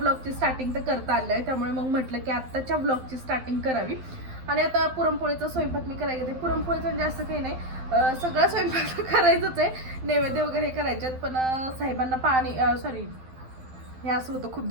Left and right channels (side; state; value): left; late; 12 ms